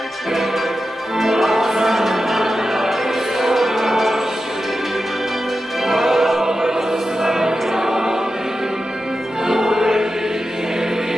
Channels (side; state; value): both; normal; correlation 0.91